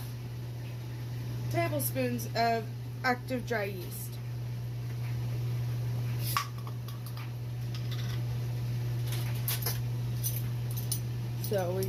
tablespoons of active dry yeast. So we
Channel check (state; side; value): identical; both; correlation 1.00